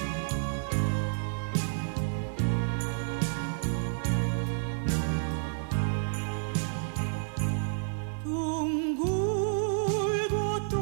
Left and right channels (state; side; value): silent; left; digital silence